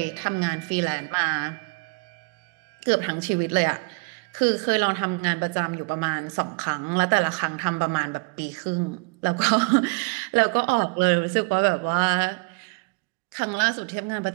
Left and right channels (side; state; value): left; quieter; 31.9 dB